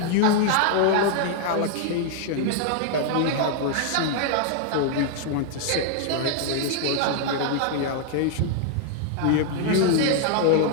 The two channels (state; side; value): different; both; correlation 0.00